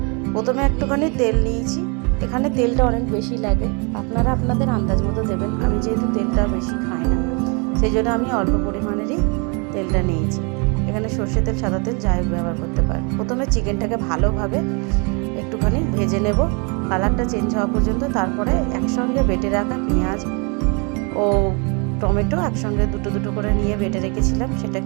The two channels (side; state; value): left; quieter; 33.2 dB